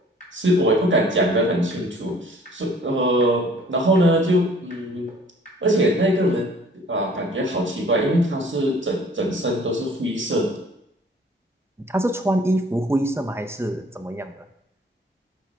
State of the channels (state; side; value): normal; both; correlation 0.54